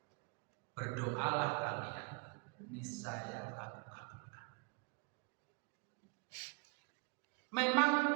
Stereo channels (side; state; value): left; quieter; 32.5 dB